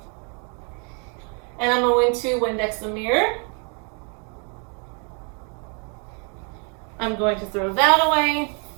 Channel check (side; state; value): left; quieter; 38.1 dB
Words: and I'm going to Windex the mirror. I'm going to throw that away.